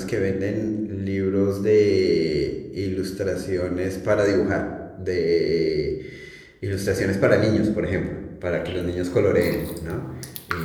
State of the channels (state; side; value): identical; both; correlation 1.00